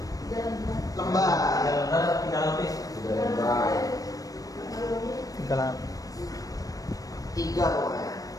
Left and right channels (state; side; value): late; right; 0.17 ms